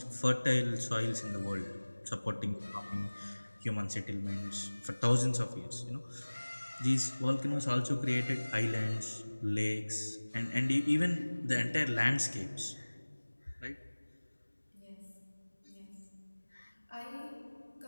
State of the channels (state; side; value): inverted; both; correlation -1.00